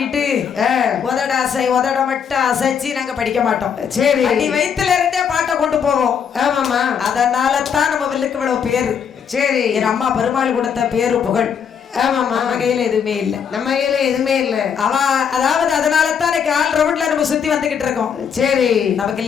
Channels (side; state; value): right; quieter; 7.4 dB